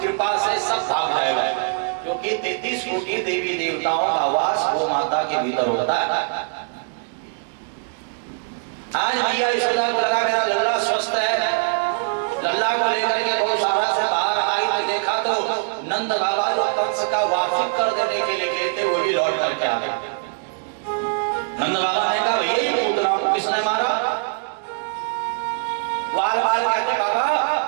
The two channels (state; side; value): silent; left; digital silence